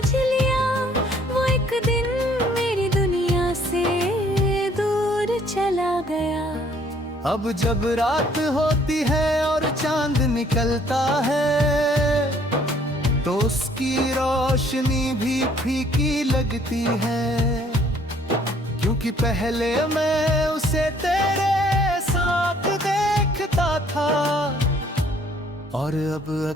लिया, वो एक दिन मेरी दुनिया से दूर चला गया। अब जब रात होती है और चांद निकलता है तो उसकी रोशनी भी फीकी लगती है, क्योंकि पहले मैं उसे तेरे साथ देखता था और अब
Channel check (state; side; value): normal; both; correlation 0.61